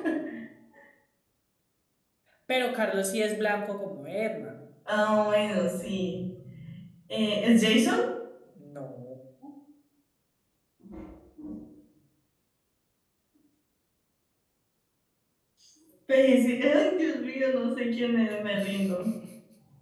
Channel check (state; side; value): identical; both; correlation 1.00